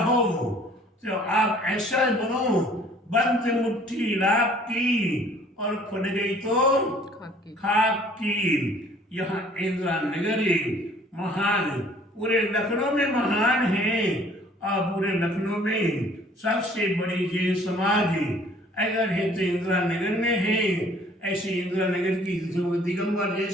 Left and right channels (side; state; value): both; normal; correlation 0.55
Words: तो आप ऐसा बनो, बंद मुट्ठी लाभ की और खुल गई तो खाक की। यहाँ इंदिरा नगर महान, पूरे लखनऊ में महान है, और पूरे लखनऊ में सबसे बड़ी जैन समाज अगर है तो इंदिरा नगर में है। ऐसे इंदिरा नगर की दिगंबर जैन